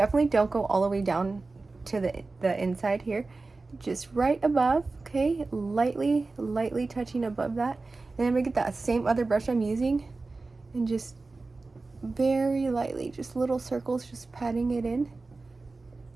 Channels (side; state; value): left; quieter; 3.6 dB